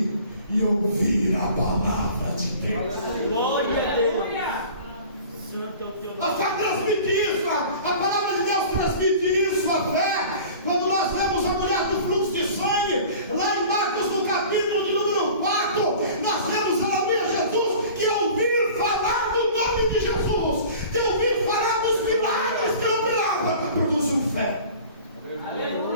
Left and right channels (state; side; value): inverted; both; correlation -0.43